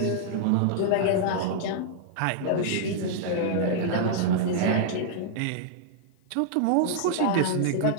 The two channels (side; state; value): both; different; correlation -0.01